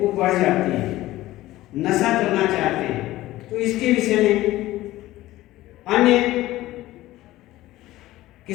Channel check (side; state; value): right; quieter; 16.4 dB